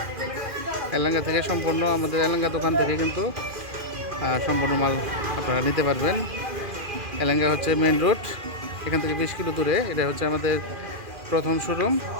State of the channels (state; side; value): late; left; 2.4 ms